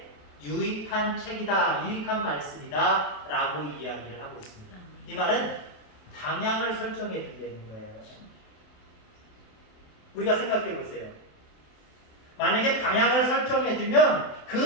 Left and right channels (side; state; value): right; late; 27 ms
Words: 유익한 책이다, 유익한 말씀이다 라고 이야기를 하고 있습니다. 이 말은 방향을 설정해 준다는 거예요. 우리가 생각해 보세요. 만약에 방향을 설정해 주면